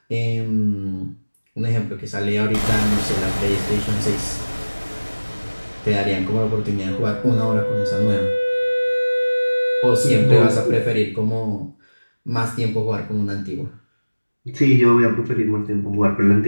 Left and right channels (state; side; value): inverted; both; correlation -1.00